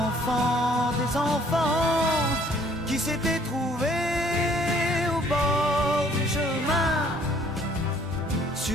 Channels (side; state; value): both; normal; correlation 0.60